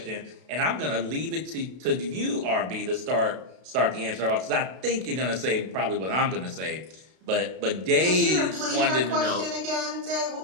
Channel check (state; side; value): late; left; 32 ms